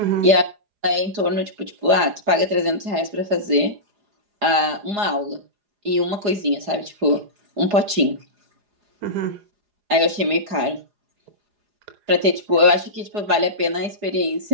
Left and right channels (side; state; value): left; late; 4.9 ms